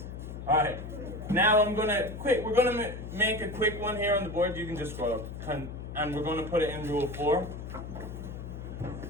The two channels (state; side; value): noise; left; hum, 9 dB below the sound